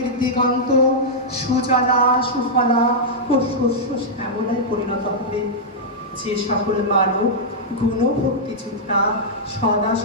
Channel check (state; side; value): normal; both; correlation -0.08